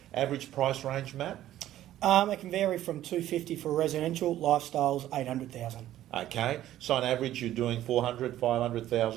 Average price range, Matt? It can vary from $250 for residential, lifestyles, $800,000. Okay, so on average you're doing $400,000,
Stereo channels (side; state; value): left; quieter; 13.1 dB